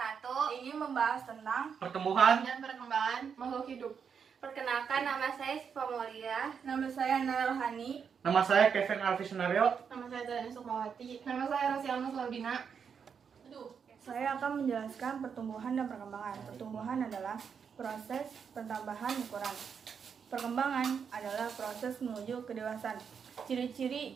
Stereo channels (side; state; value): left; quieter; 6.7 dB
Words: ingin membahas tentang Pertumbuhan dan perkembangan makhluk hidup. Perkenalkan, nama saya Siva Molia. nama saya Nara Rohani. Nama saya Kevin Alfi Sunario. Nama saya Zani Sukmawati. Nama saya Rosialma Slaudina. Saya akan menjelaskan pertumbuhan dan perkembangan. Pertumbuhan adalah proses pertambahan ukuran. Perkembangan adalah proses menuju kedewasaan.